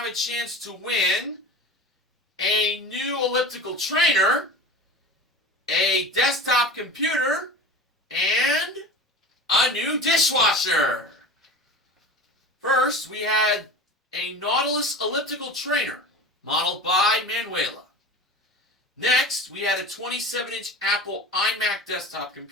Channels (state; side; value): normal; both; correlation 0.33